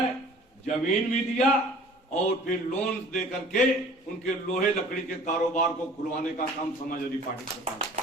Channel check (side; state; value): both; normal; correlation 0.48